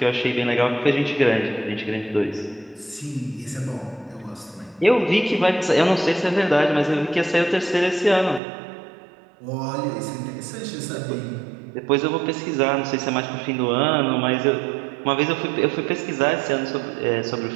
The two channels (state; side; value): drops out; left; at 8.4 s